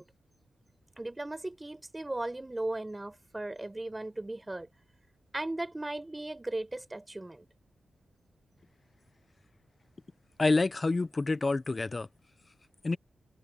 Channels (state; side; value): normal; both; correlation 0.97